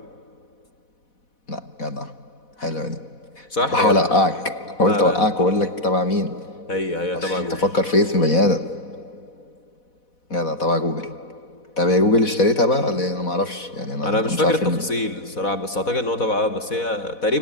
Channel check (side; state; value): right; late; 4.1 ms